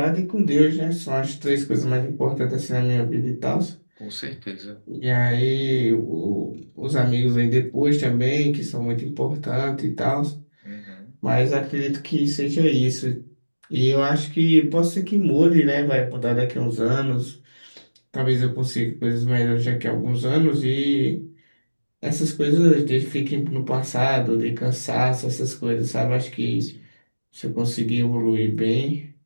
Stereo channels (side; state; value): both; inverted; correlation -1.00